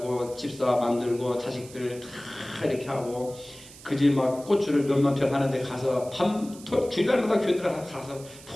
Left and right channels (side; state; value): right; noise; hiss, 19 dB below the sound